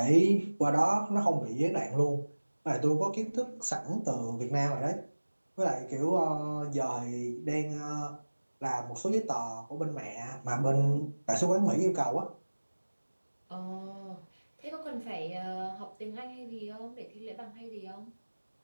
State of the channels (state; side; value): inverted; both; correlation -1.00